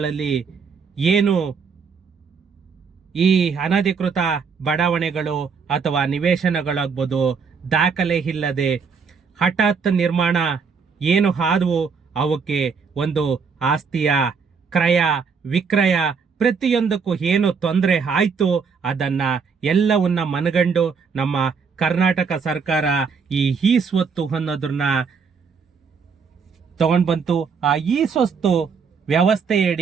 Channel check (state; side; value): quieter; left; 5.7 dB